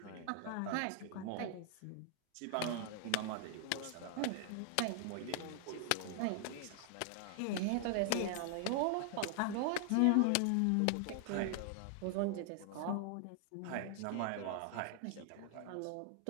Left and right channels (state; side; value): different; both; correlation 0.00